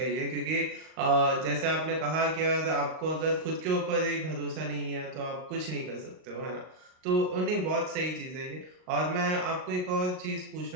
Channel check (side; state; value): left; late; 38 ms